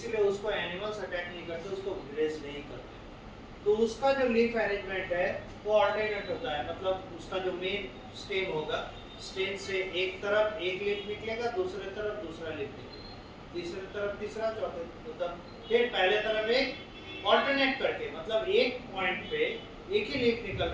उसको एनिमल्स अटैक नहीं करते, उसको ग्रेज नहीं करते। तो उसका जो लीफ अरेंजमेंट है वो ऑल्टरनेट होता है, मतलब उसका जो मेन स्टेम होगा, स्टेम से एक तरफ एक लीफ निकलेगा, दूसरे तरफ दूसरा लीफ निकलेगा, तीसरे तरफ तीसरा, चौथे मतलब फिर पहले तरफ एक ऑल्टरनेट करके, मतलब एक पॉइंट पे एक ही लीफ निकल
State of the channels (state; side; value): identical; both; correlation 1.00